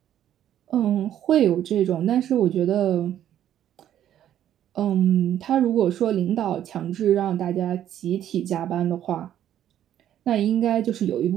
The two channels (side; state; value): left; quieter; 11.1 dB